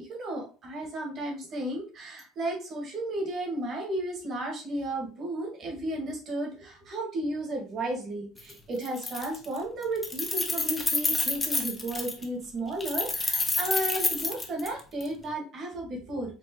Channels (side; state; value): both; normal; correlation 0.71